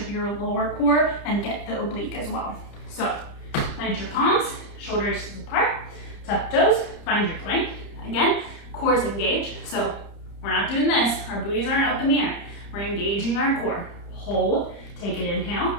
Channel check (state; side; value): late; right; 30 ms